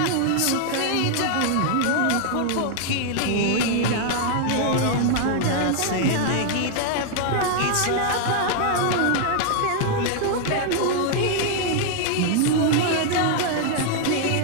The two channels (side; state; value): both; different; correlation 0.00